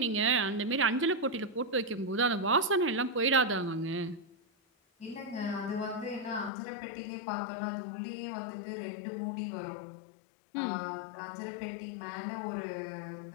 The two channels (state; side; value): drops out; right; at 6.5 s